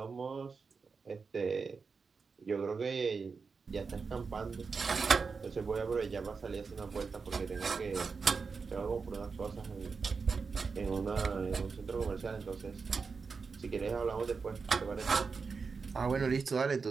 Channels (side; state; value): left; quieter; 5.0 dB